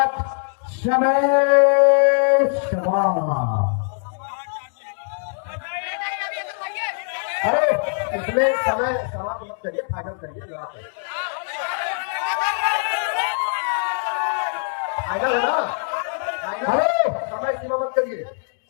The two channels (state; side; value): silent; right; digital silence